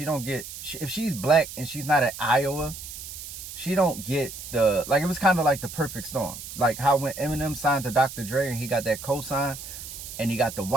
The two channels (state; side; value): noise; right; hiss, 11 dB below the sound